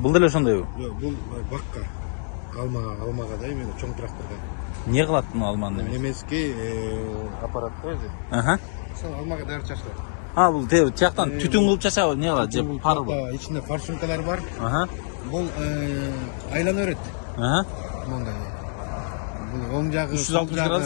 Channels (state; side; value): silent; right; digital silence